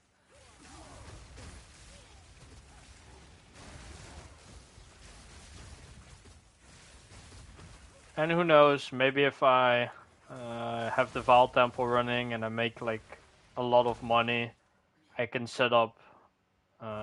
And who knows, maybe if I have the Val Temple running and I make like a lot of money, I can set up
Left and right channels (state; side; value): identical; both; correlation 1.00